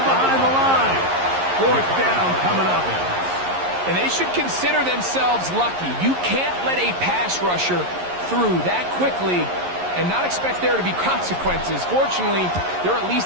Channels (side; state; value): left; late; 11 ms